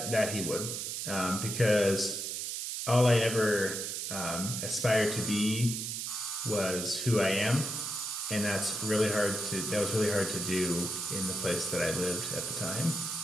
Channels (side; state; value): right; noise; hiss, 4 dB below the sound